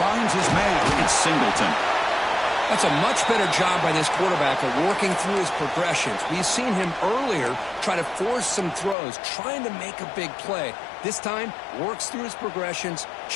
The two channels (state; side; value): drops out; right; at 9.0 s